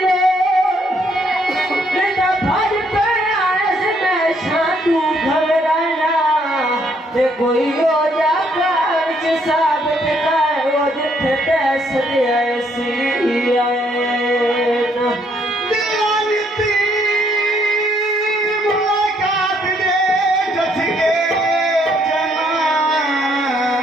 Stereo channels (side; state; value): both; normal; correlation 0.69